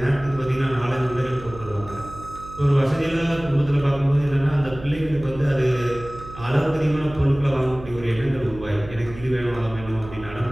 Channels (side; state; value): right; noise; hum, 16 dB below the sound